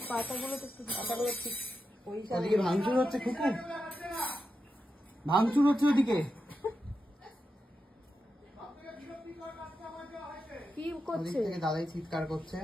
পাতাগুলো তো পাতাগুলো ঠিক ওদিকে ভাঙচুর হচ্ছে, খুকু ভাঙচুর হচ্ছে ওদিকে। কি করছে? দাদাই চিৎকার করছে।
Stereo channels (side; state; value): both; normal; correlation 0.89